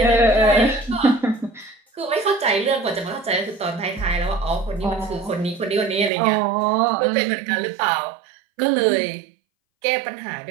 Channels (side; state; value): left; drops out; at 6.1 s